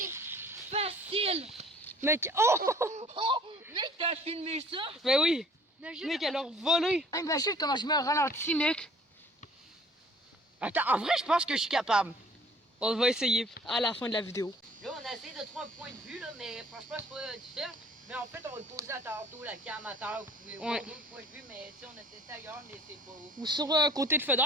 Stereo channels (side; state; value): both; normal; correlation 0.53